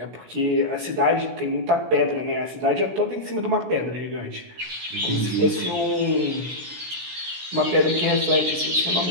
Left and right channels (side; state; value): left; late; 16 ms